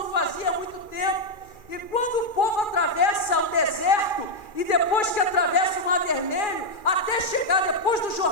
fazia há muito tempo. E quando o povo atravessa o deserto, e depois que atravessa o Mar Vermelho, até chegar depois do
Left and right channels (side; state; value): right; late; 2.4 ms